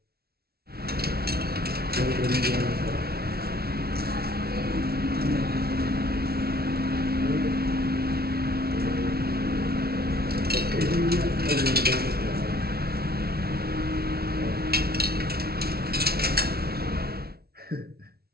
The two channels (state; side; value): late; left; 0.45 ms